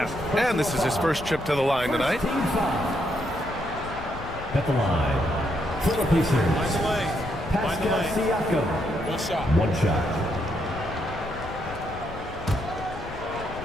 And this is his first trip to the line tonight. At the line, for the Pacers, Pascal Siakam. One shot.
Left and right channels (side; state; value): left; noise; rumble, 13 dB below the sound